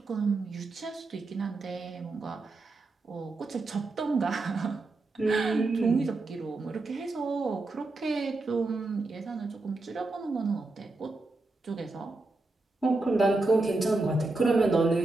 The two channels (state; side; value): quieter; left; 3.2 dB